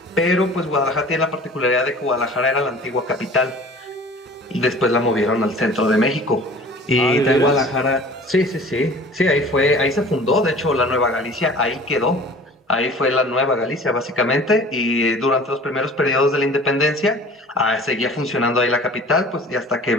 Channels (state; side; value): normal; both; correlation 0.44